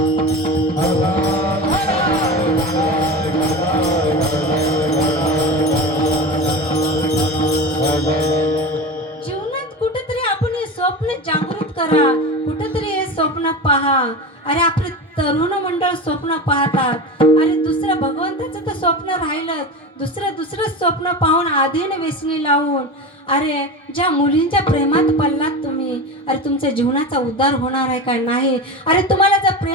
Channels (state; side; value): normal; both; correlation 0.27